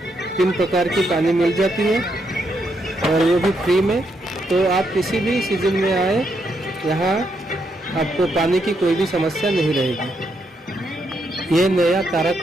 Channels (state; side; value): normal; both; correlation 0.78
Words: 3 प्रकार की पानी मिल जाती है और वो भी फ्री में। तो आप किसी भी सीजन में आए, यहाँ आपको पानी की कोई भी समस्या नहीं रहेगी। ये नया